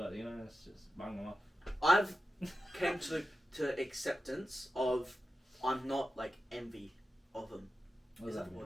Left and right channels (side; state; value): both; normal; correlation 0.91